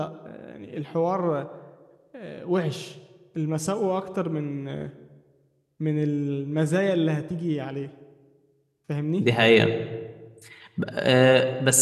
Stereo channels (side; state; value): both; identical; correlation 1.00